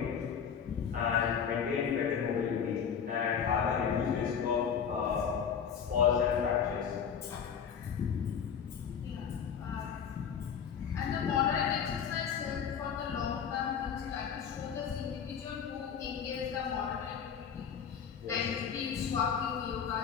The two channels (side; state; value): right; quieter; 7.4 dB